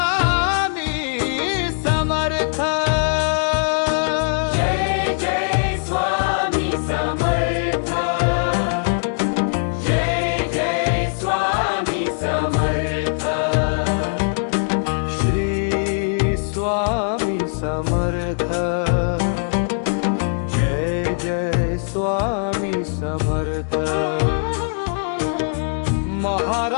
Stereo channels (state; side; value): silent; right; digital silence